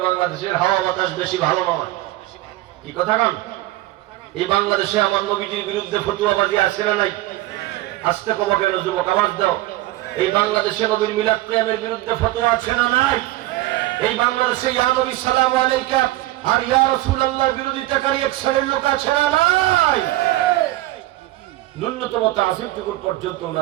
বাংলাদেশের হাওয়া বাতাস বেশি ভালো নয়, কি কথা কান? এই বাংলাদেশে আমার নবীজির বিরুদ্ধে ফতুয়াবাজি আছে না নাই? আসতে কবা কেন যুবক, আওয়াজ দাও। এই বাংলাদেশে নবীর মিলাদ কিয়ামের বিরুদ্ধে ফতোয়া আছে না নাই? এই বাংলাদেশে ইয়া নবী সালামু আলাইকা আর ইয়া রাসূলুল্লাহ বিরোধিতাকারী এক শ্রেণীর লোক আছে না নাই? ন্যূনতম তাযীবটুকু পর্যন্ত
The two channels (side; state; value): left; quieter; 17.1 dB